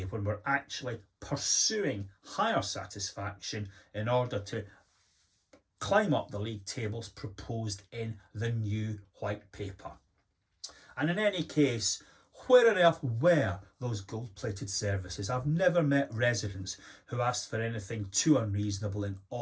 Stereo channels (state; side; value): identical; both; correlation 1.00